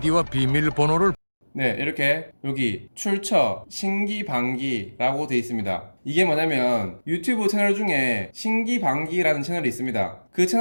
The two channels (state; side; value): inverted; both; correlation -1.00